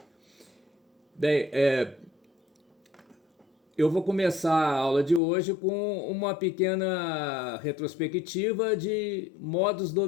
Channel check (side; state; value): right; drops out; at 5.2 s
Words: Bem, eu vou começar a aula de hoje com uma pequena retrospectiva de modos